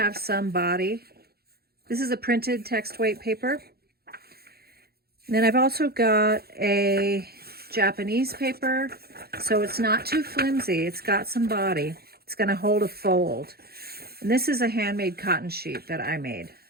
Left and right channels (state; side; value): late; left; 0.45 ms